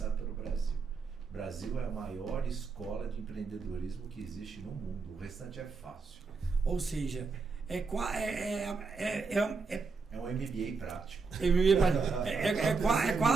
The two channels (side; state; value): left; quieter; 4.5 dB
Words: pelo Brasil. O Brasil é a maior escola de empreendedorismo que existe no mundo. O restante é fácil. Ou seja, é um MBA prático. É